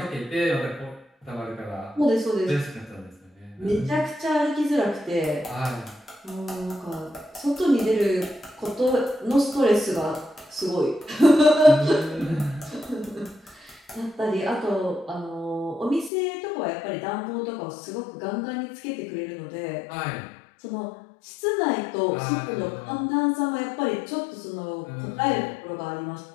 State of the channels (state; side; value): drops out; right; at 16.1 s